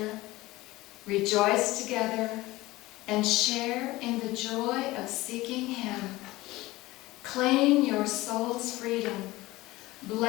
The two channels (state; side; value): quieter; right; 19.1 dB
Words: rejoice together, and share in the joy of seeking Him. Claim your soul's freedom.